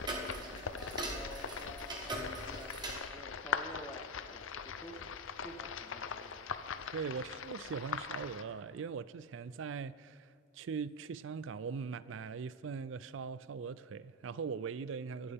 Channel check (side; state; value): both; normal; correlation 0.09